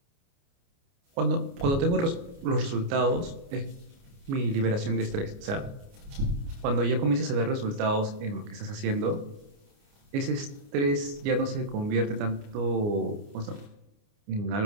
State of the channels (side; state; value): left; late; 29 ms